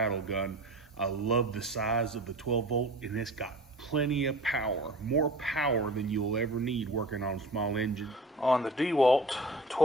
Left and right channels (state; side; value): normal; both; correlation 0.40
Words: gun. I love the size of the 12 volt, and it's got plenty of power, more power than you'll ever need working on small engines. On the Dewalt